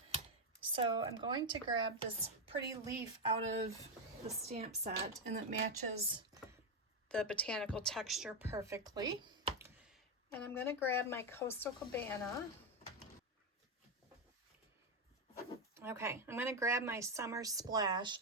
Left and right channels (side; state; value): both; normal; correlation 0.07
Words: So I'm going to grab this pretty leaf out of the stamp set, and it matches the botanical texture perfectly. And I'm going to grab my Coastal Cabana. Okay, I'm going to grab my Summer Splash.